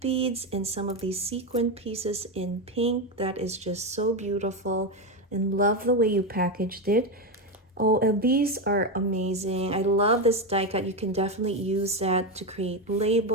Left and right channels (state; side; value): normal; both; correlation 0.11